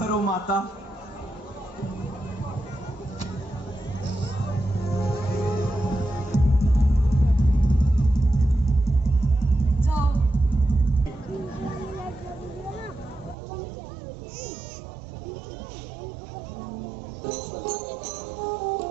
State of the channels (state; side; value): drops out; left; at 13.4 s